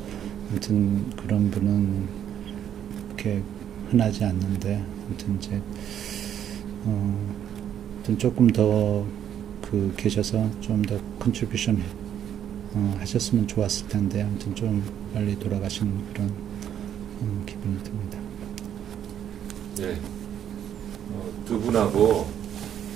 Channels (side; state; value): left; quieter; 9.8 dB